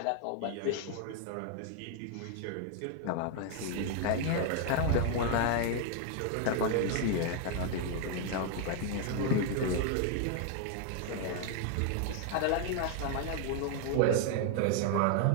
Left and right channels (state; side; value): different; both; correlation 0.00